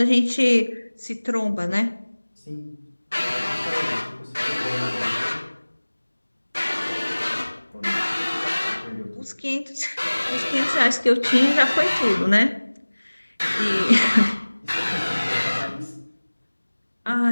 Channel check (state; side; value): inverted; both; correlation -1.00